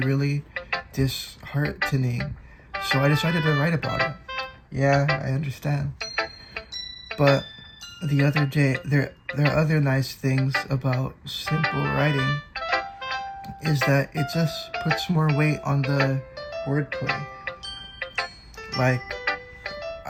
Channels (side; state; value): both; identical; correlation 1.00